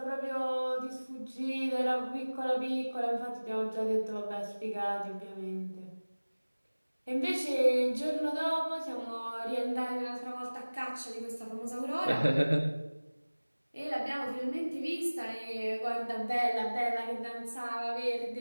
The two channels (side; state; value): both; inverted; correlation -1.00